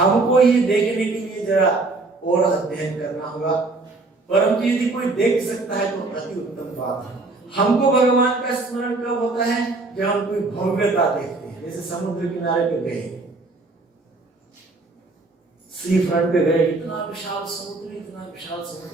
ये देखने के लिए जरा और अध्ययन करना होगा, परंतु यदि कोई देख सकता है तो अति उत्तम बात है। हमको भगवान का स्मरण कब होता है, जब हम कोई भव्यता देखते हैं। जैसे समुद्र किनारे पे गए, सी फ्रंट पे गए, इतना विशाल समुद्र, इतना विशाल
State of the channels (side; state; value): left; quieter; 3.4 dB